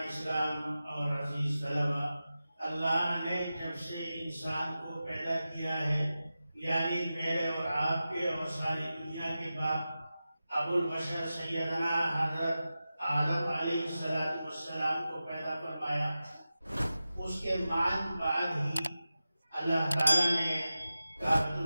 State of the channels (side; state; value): both; inverted; correlation -0.94